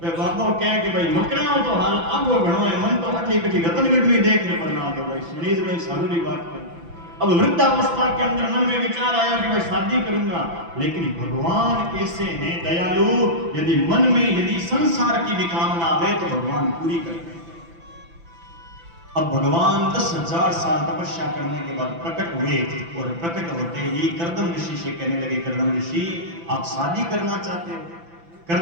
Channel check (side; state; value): left; late; 5.9 ms